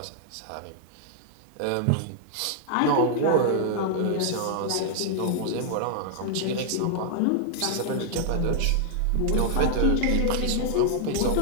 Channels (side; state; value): both; different; correlation -0.01